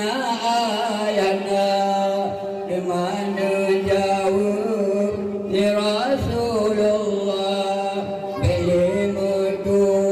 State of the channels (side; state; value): both; identical; correlation 1.00